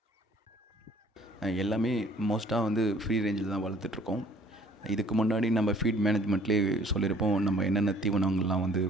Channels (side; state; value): both; normal; correlation 0.56